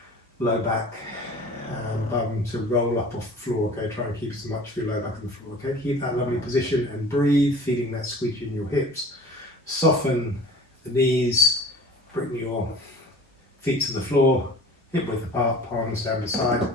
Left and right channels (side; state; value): both; normal; correlation 0.43